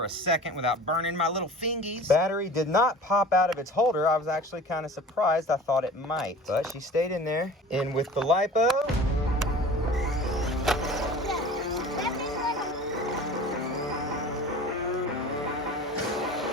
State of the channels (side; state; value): both; normal; correlation 0.41